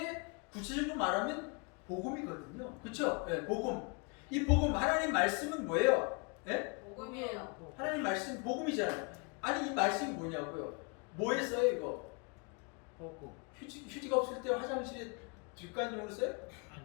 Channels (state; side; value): quieter; right; 33.3 dB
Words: 구체적으로 말하면 복음이거든요. 그렇죠? 예, 복음. 이 복음 하나님 말씀은 뭐예요? 예? 복음이에요. 하나님 말씀 복음이잖아요. 아니 이 말씀이 뭐냐고요? 뭐에 써요 이거? 복음. 휴지가 없을 때 화장실에 뒷간용으로 써요?